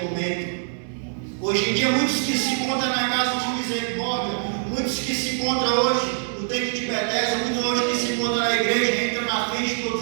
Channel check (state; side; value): silent; left; digital silence